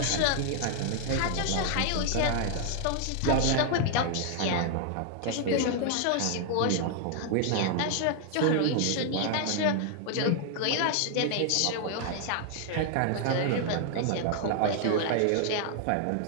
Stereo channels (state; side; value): different; both; correlation 0.00